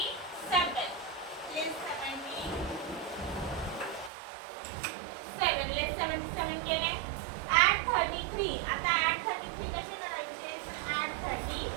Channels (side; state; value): left; drops out; at 4.1 s